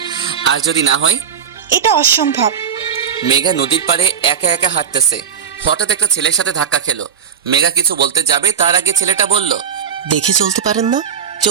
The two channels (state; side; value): quieter; left; 7.6 dB